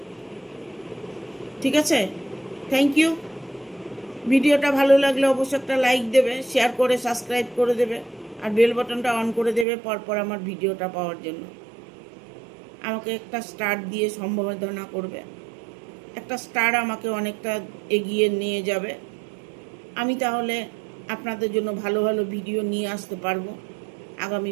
ঠিক আছে? Thank you. ভিডিওটা ভালো লাগলে অবশ্যই একটা লাইক দেবে, শেয়ার করে সাবস্ক্রাইব করে দেবে, আর বেল বাটনটা অন করে দেবে পরপর আমার ভিডিওটা পাওয়ার জন্য। আমাকে একটা স্টার দিয়ে সম্বোধনা করবে, একটা স্টার আমাকে অনেকটা এগিয়ে নিয়ে যাবে। আমি তাহলে আপনাদের জন্য ভালো ভালো ভিডিও নিয়ে আসতে পারবো। আগামী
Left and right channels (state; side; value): drops out; left; at 9.7 s